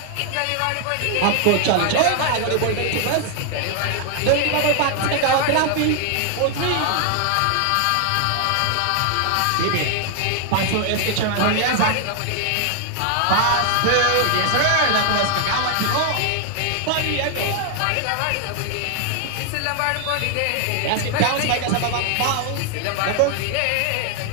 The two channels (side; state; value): both; different; correlation 0.00